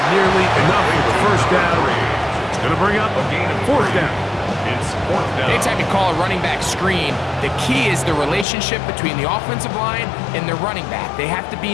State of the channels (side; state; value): right; drops out; at 8.5 s